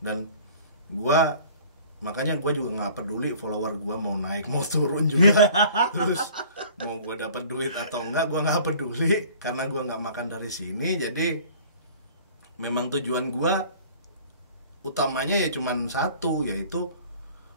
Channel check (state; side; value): inverted; both; correlation -0.48